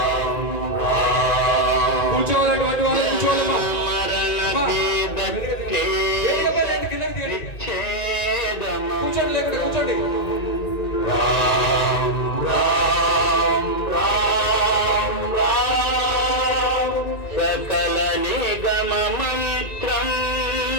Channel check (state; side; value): late; right; 1.9 ms